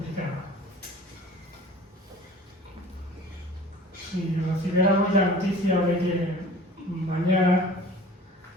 Si recibiéramos la noticia de que mañana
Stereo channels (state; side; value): normal; both; correlation 0.45